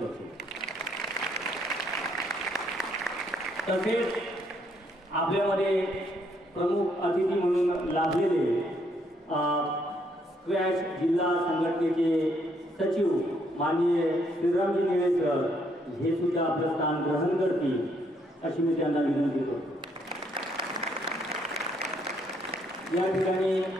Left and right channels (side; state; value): both; normal; correlation 0.71